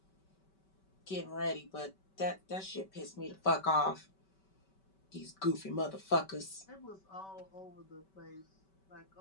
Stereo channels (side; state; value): right; late; 5.2 ms